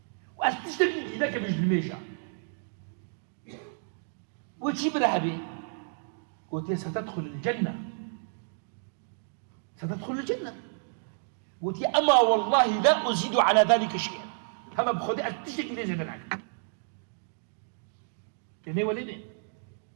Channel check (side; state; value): left; silent; digital silence